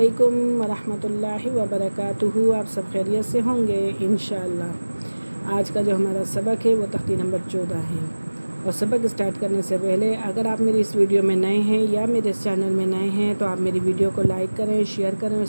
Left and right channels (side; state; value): both; inverted; correlation -1.00